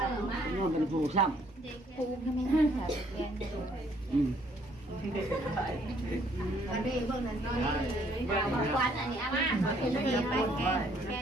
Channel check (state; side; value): normal; both; correlation 0.64